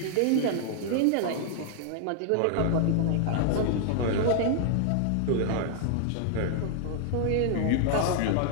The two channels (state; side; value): different; both; correlation -0.01